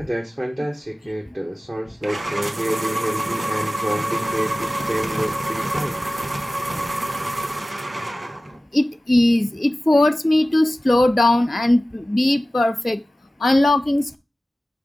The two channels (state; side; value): normal; both; correlation 0.97